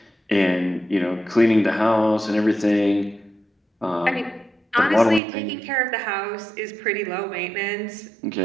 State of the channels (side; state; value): left; drops out; at 5.2 s